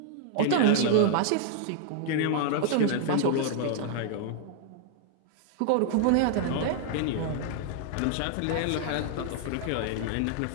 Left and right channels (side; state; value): both; different; correlation 0.00